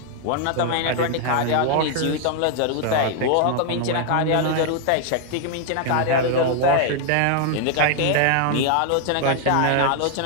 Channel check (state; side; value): different; both; correlation 0.00